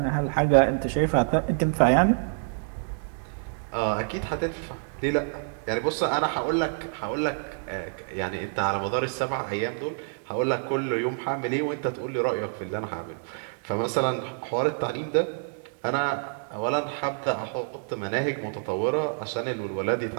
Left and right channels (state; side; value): silent; left; 60 dB below the other